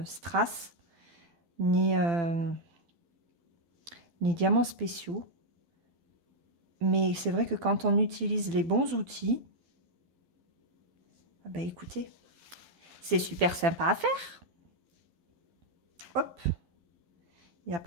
Strass, ni diamants spéciaux. Mais c'est vrai que quand on utilise les bons outils, ah bah écoutez, c'est super sympa à faire. Hop, il n'a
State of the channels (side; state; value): left; late; 12 ms